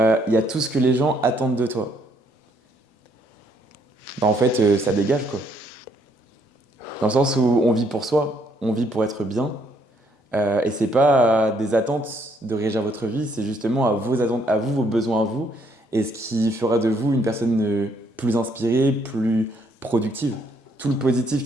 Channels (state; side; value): normal; both; correlation 0.69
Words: y a tout ce que les gens attendent de toi. Ben, en fait, ça dégage quoi. Dans le sens où on vit pour soi, on vit pour être bien. Et c'est pas des attentes de régir votre vie, c'est justement à vos attentes, à vous, vos besoins à vous, et ce qui fera de vous une personne plus inspirée, plus productive. Tout le positif